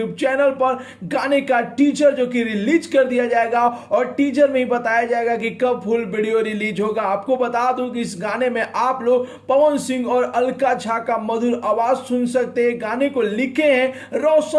channel पर गाने का टीजर जो कि रिलीज कर दिया जाएगा और टीजर में ही बताया जाएगा कि कब फुल वीडियो रिलीज होगा। आपको बता दूं कि इस गाने में आप लोग पवन सिंह और अलका झा का मधुर आवाज सुन सकते हैं। गाने को लिखे हैं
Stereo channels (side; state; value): both; identical; correlation 1.00